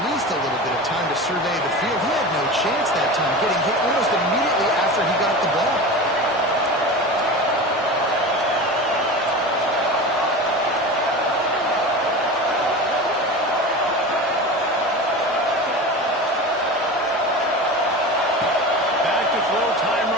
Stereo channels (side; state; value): both; normal; correlation 0.30